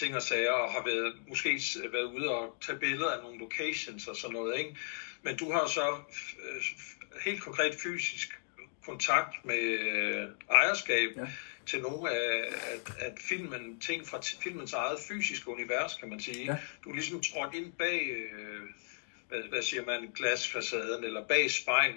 og sager, og har måske været ude og tage billeder af nogle locations og sådan noget, ikke? Men du har så helt konkret fysisk kontakt med ejerskab til nogle af ting fra filmens eget fysiske univers, kan man sige. Ja. Du er ligesom trådt ind bag, hvad siger man, glasfacaden, eller bag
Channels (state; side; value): silent; right; digital silence